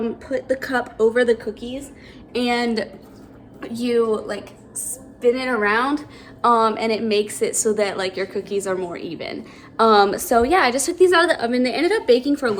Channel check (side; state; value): both; identical; correlation 1.00